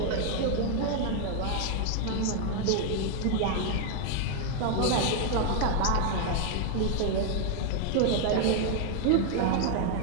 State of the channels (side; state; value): both; different; correlation 0.00